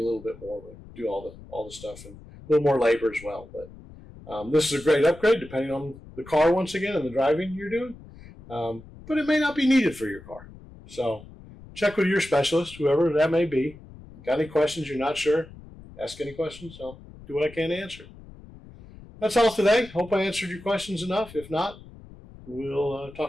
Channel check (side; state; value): left; noise; rumble, 19 dB below the sound